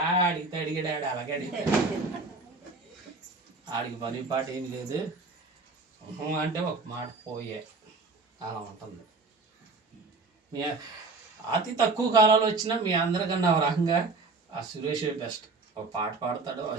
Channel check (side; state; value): left; quieter; 3.7 dB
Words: అడిగాడు అలాగే అడిగాడు. ఆడికి పని పాట ఏం లేదు అంటే ఒక మాట పోయే అలా ఉంటుంది. మీ అతి తక్కువ కాలంలో వచ్చినా మీ అందరికన్నా ఒక రకంగా ఆ సురేష్ బెస్ట్. ఒక పాట పాడతాడు, ఒక